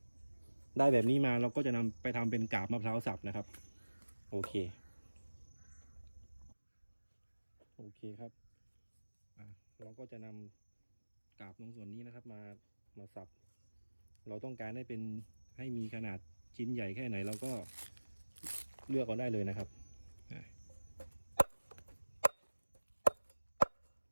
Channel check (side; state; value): both; inverted; correlation -1.00